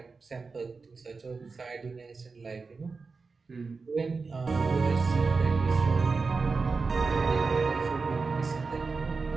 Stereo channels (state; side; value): quieter; left; 4.4 dB